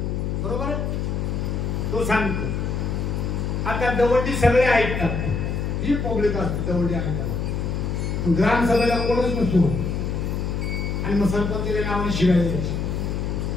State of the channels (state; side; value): noise; left; hum, 1 dB below the sound